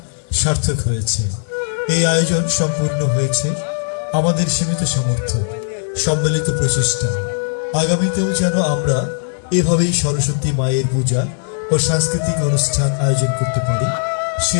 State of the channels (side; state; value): right; silent; 67 dB below the other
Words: সার্থক হয়েছে। এই আয়োজন সম্পূর্ণ হয়েছে আমাদের সীমিত সামর্থ্য, সম্মিলিত প্রচেষ্টা। আগামীতেও যেন আমরা এভাবেই সরস্বতী মায়ের পূজা ও সাংস্কৃতিক অনুষ্ঠান আয়োজন করতে পারি,